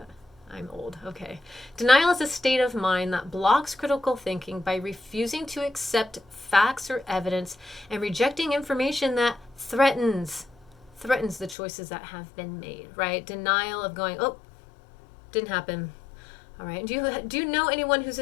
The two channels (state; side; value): drops out; right; at 11.6 s